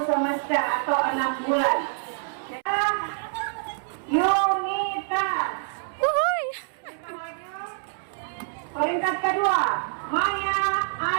semester atau 6 bulan. Unitas. Peringkat kedua, Maya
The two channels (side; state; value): left; silent; 61 dB below the other